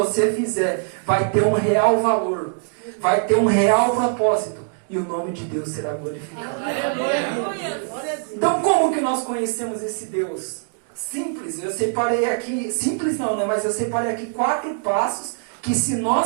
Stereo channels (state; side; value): silent; left; digital silence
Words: fizer vai ter um real valor, vai ter um real propósito e o nome de Deus será glorificado. Então como que nós conhecemos esse Deus? Simples, eu separei aqui, simples não, né? Mas eu separei aqui 4 passos que se